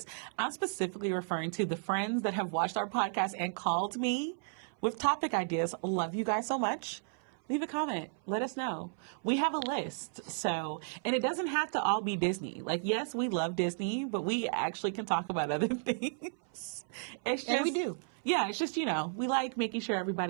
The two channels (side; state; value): left; silent; 55 dB below the other